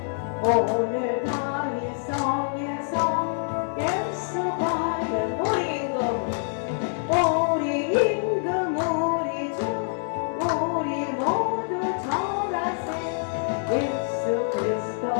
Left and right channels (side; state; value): right; silent; digital silence